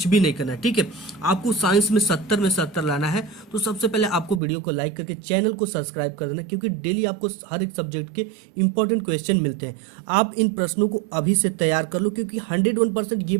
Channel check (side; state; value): left; drops out; at 4.4 s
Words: भी नहीं करना है। ठीक है, आपको साइंस में 70 में 70 लाना है। तो सबसे पहले आपको वीडियो को लाइक करके चैनल को सब्सक्राइब कर देना, क्योंकि डेली आपको हर एक सब्जेक्ट के इंपॉर्टेंट क्वेश्चन मिलते हैं। आप इन प्रश्नों को अभी से तैयार कर लो, क्योंकि 101%